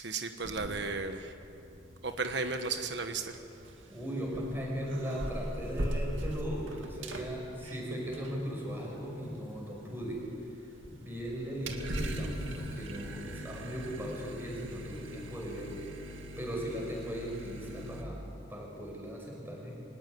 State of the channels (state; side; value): normal; both; correlation 0.58